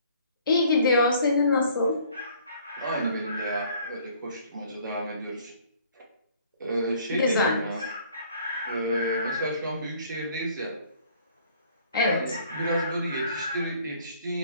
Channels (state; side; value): inverted; both; correlation -0.58